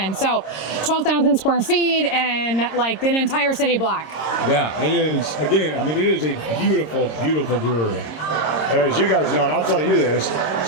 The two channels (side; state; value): right; late; 26 ms